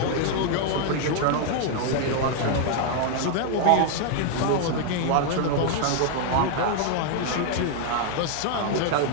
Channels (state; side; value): different; both; correlation 0.00